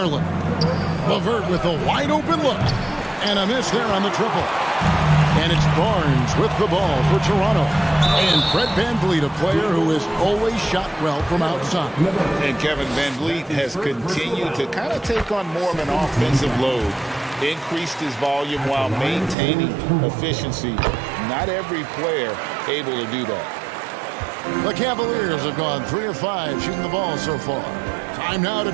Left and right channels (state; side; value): drops out; left; at 19.4 s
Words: LeVert with a wide open look. And a miss there on the triple. And it's Barnes with the ball for Toronto. And Fred Van Vliet, a player who has always shot well from outside. And Kevin Van Vliet has continued to kind of take on more of an offensive load. Increased his volume while maintaining efficiency. Not every player able to do that. The Cavaliers have gone 3 of 5 shooting the ball so far. Time now to